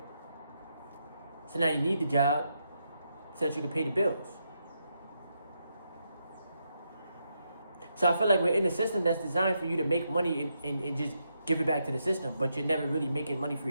So now you need the job so that you can pay the bills. So I feel like we're in a system that's designed for you to make money and just give it back to the system, but you're never really making money for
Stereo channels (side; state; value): both; inverted; correlation -0.82